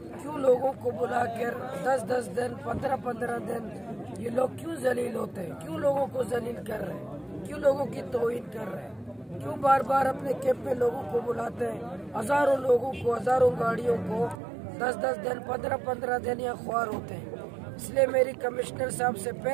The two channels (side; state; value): left; drops out; at 14.4 s